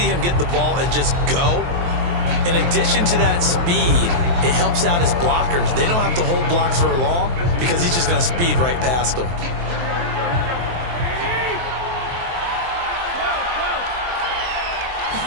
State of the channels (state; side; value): late; left; 23 ms